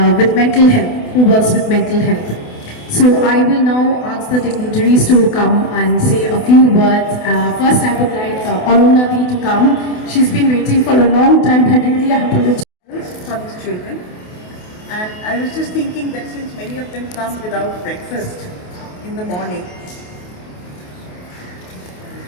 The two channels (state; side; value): late; right; 28 ms